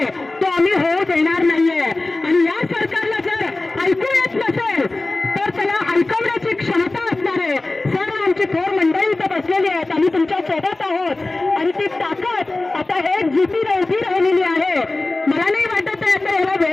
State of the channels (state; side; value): quieter; right; 3.0 dB